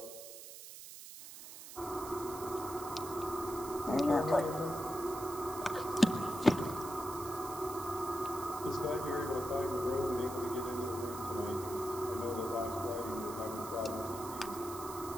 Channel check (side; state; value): right; noise; hiss, 13 dB below the sound